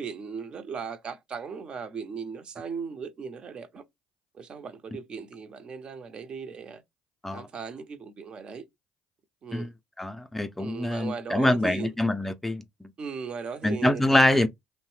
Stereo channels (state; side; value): normal; both; correlation 0.90